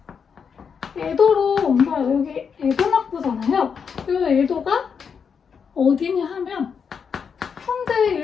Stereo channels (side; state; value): right; quieter; 6.5 dB